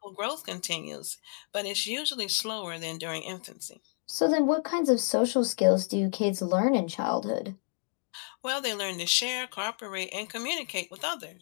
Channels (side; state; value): right; silent; 58 dB below the other